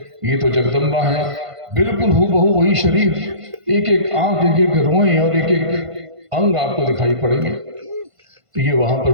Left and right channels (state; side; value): late; left; 1.5 ms